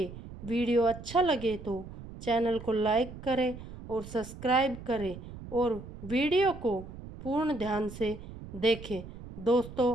वीडियो अच्छा लगे तो चैनल को लाइक करें और सब्सक्राइब करें और वीडियो को पूर्ण ध्यान से देखें।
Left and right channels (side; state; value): right; noise; rumble, 13 dB below the sound